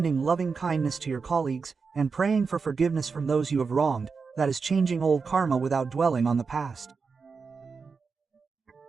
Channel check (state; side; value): quieter; left; 5.0 dB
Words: loving kindness to your colleagues, and praying for forgiveness from those you have wronged, that is changing old karma without dwelling on the past.